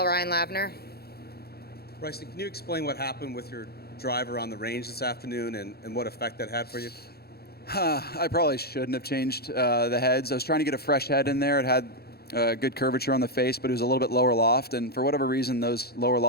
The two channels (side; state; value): right; late; 0.46 ms